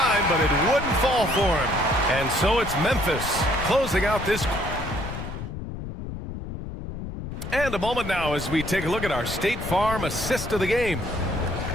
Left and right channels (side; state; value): left; noise; rumble, 8 dB below the sound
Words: but it wouldn't fall for him. And so it's Memphis closing out this. And a moment now as we take a look at our State Farm assist of the game.